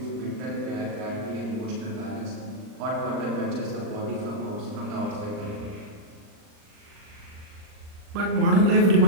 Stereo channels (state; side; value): late; left; 39 ms